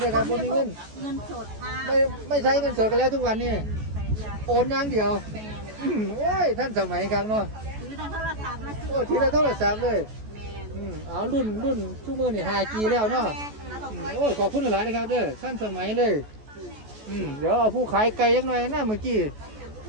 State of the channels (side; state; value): left; late; 14 ms